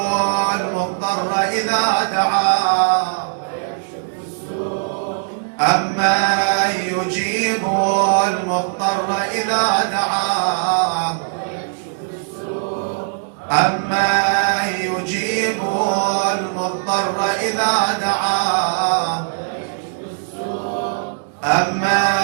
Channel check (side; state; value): left; silent; digital silence